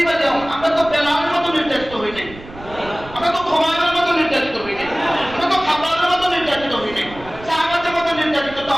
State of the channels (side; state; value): right; noise; rumble, 17 dB below the sound